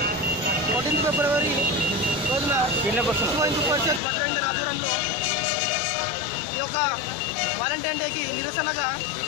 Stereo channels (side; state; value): right; drops out; at 4.0 s